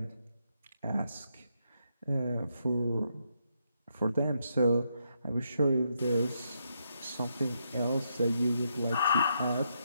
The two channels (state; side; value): inverted; both; correlation -0.79